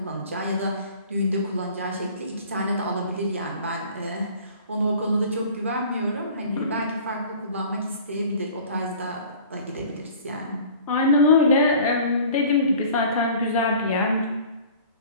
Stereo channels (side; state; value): both; inverted; correlation -0.46